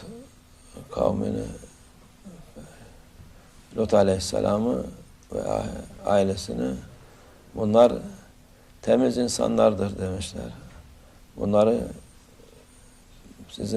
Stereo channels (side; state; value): both; identical; correlation 1.00